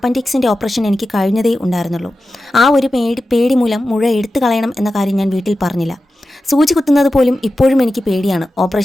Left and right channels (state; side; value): normal; both; correlation 0.93